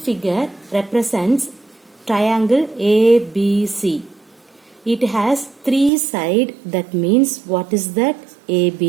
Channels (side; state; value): left; drops out; at 5.9 s